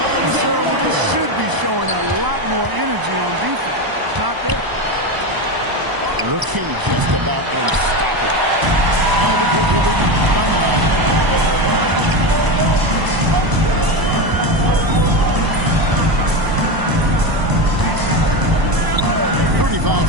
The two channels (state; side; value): late; left; 1.0 ms